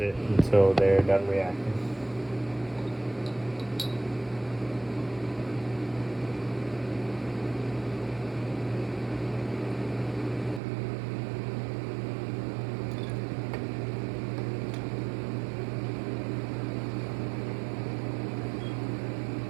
until they're done reacting.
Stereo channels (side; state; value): left; drops out; at 10.6 s